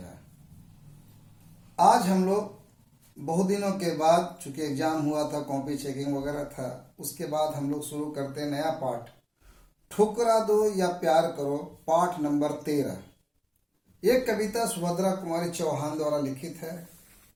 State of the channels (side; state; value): both; identical; correlation 1.00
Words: आज हम लोग बहुत दिनों के बाद, चूंकि एग्जाम हुआ था, कॉपी चेकिंग वगैरह था, उसके बाद हम लोग शुरू करते हैं नया पाठ, ठुकरा दो या प्यार करो, पाठ नंबर 13। ये कविता सुभद्रा कुमारी चौहान द्वारा लिखित है।